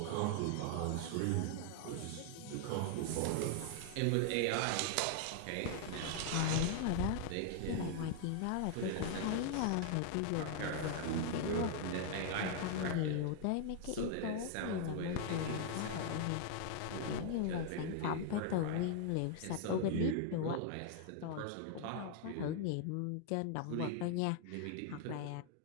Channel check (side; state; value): both; different; correlation 0.00